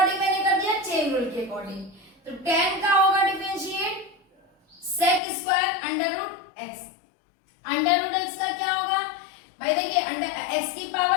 मैंने कर दिया, चेन रूल के अकॉर्डिंग। तो tan का होगा differentiate sec square under root x. Under root x का क्या होगा भाई, देखिए अंडर एक्स की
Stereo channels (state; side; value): drops out; right; at 5.2 s